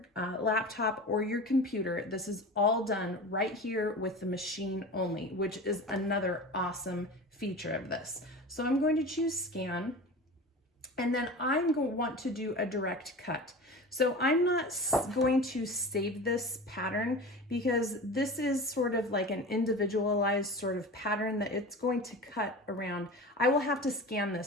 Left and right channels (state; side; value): normal; both; correlation 0.33